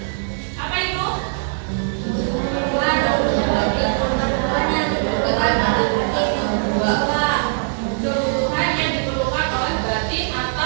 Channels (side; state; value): left; silent; 65 dB below the other